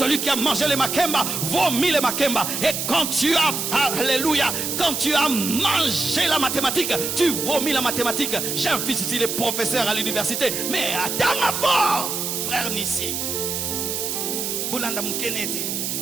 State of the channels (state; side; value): noise; right; hiss, 2 dB below the sound